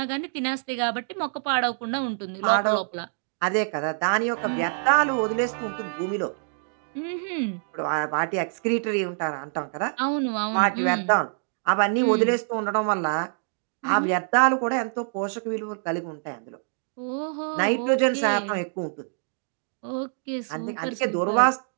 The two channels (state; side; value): silent; left; digital silence